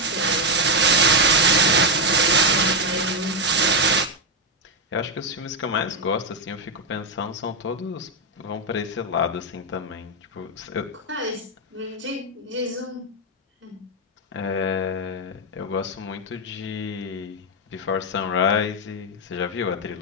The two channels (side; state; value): both; normal; correlation 0.03